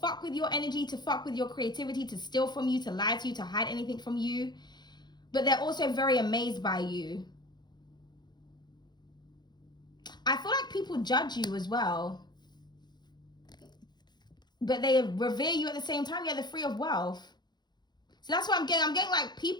with your energy, to fuck with your creativity, to steal from you, to lie to you, to hide anything from you, but they're also very amazed by you. I feel like people judge you as well, but they revere you at the same time. Yeah, they're free of wealth. So that's what I'm getting. I'm getting like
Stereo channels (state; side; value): late; right; 0.21 ms